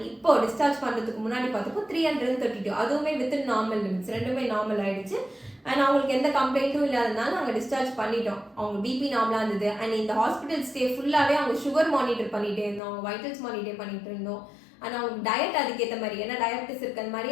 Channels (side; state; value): right; drops out; at 12.8 s